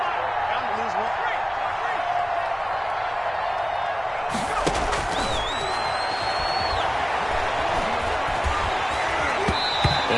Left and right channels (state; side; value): identical; both; correlation 1.00